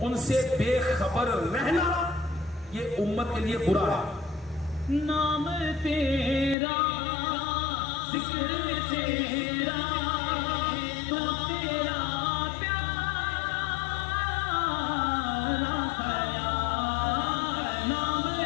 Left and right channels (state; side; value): drops out; right; at 6.6 s